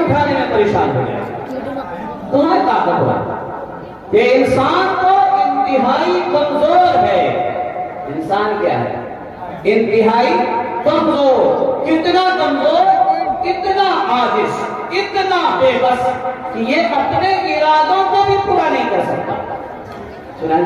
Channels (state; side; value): identical; both; correlation 1.00